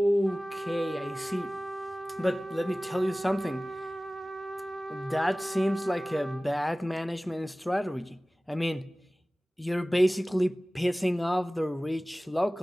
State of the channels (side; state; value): both; normal; correlation 0.98